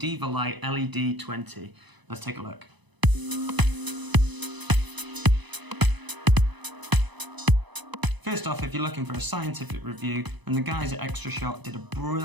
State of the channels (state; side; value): late; left; 1.0 ms